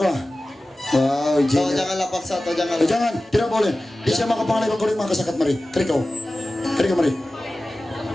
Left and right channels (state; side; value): normal; both; correlation 0.96